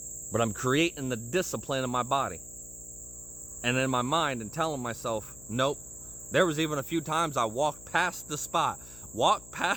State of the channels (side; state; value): left; noise; hum, 18 dB below the sound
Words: But I'm creating the discipline in my body and in my mind and telling myself, nope. There was even a few times I walked past